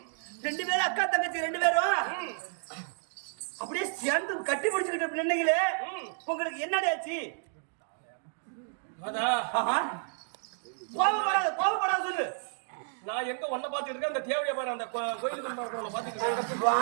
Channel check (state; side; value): silent; left; digital silence